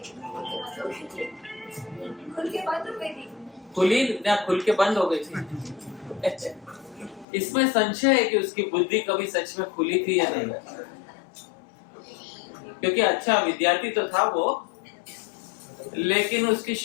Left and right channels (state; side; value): drops out; right; at 7.2 s